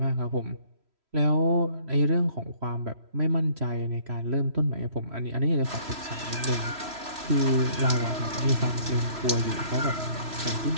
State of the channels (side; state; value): left; late; 3.1 ms